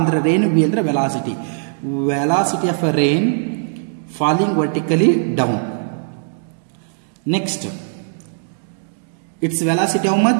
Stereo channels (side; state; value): left; silent; digital silence